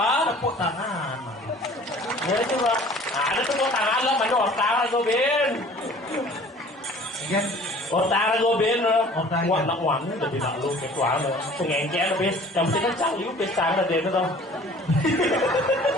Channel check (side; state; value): both; normal; correlation 0.49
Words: Tepuk tangan. Ya coba. Ada tepuk tangan lo mana otak gue bin. Kan? Otak gue bin lo. Otak. Wah nak wangi jadi nak lu ketua lo. Pengengkel lo bin. Yang penting kan cang lu besar lah dia tuh.